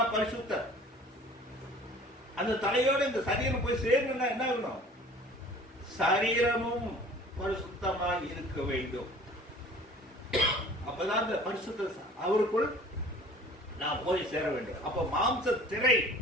பரிசுத்தர். அந்த தலையோட இந்த சரீரம் போய் சேரணும்னா என்ன ஆகணும்? சரீரமும் பரிசுத்தமாக இருக்க வேண்டும். அப்பதான் இந்த பரிசுத்த அவருக்குள் நான் போய் சேர வேண்டும். அப்ப மாம்ச திரை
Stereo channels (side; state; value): both; normal; correlation 0.48